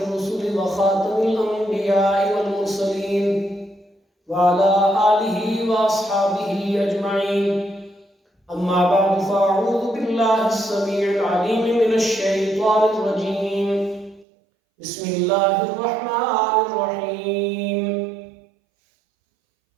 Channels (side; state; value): left; drops out; at 14.2 s